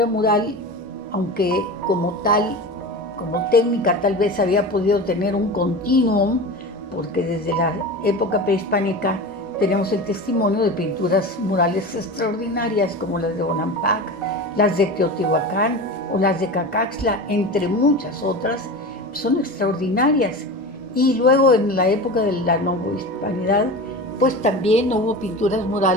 mural, aunque como tal, como técnica tal vez había podido tener un continuum, porque desde la época prehispánica tenemos el testimonio de pinturas murales extraordinarias como las de Bonampak, las de Teotihuacán o las de Cacaxtla, entre muchas otras, son extraordinarias. Y luego en la época de la novohispanidad, pues también hubo pinturas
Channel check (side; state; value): both; normal; correlation 0.29